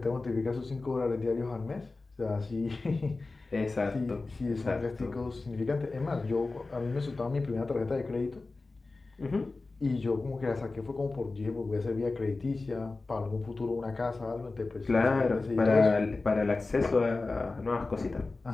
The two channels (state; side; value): quieter; right; 3.5 dB